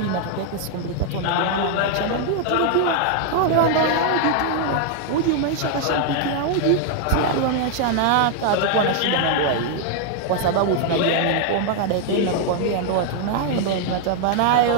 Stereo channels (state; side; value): different; both; correlation 0.00